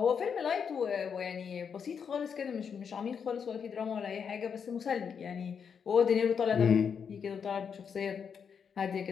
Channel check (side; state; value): right; quieter; 6.8 dB